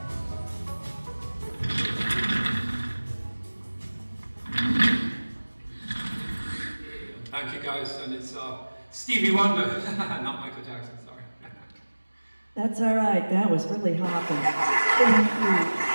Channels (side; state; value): both; inverted; correlation -1.00